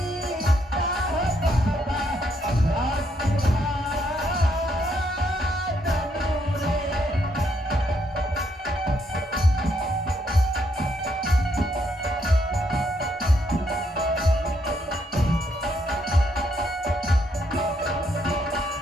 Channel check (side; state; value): both; normal; correlation 0.74